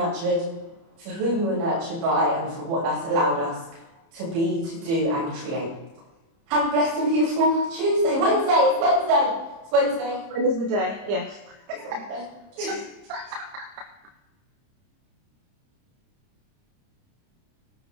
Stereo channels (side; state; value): left; late; 30 ms